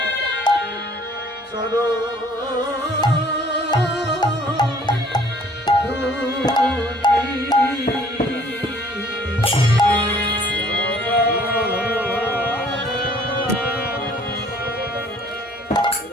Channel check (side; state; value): both; normal; correlation 0.56